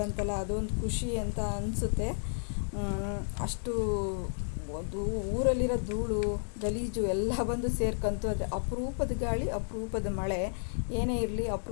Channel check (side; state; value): right; silent; digital silence